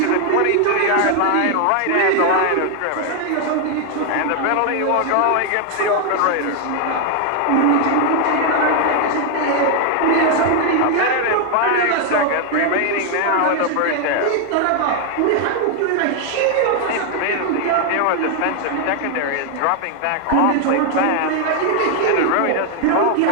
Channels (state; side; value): different; both; correlation 0.00